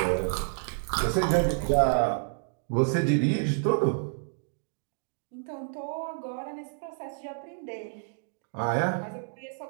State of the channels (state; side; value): silent; left; digital silence